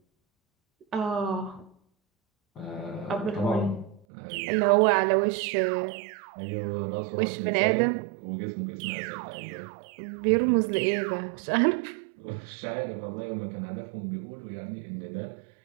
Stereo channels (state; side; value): drops out; left; at 4.0 s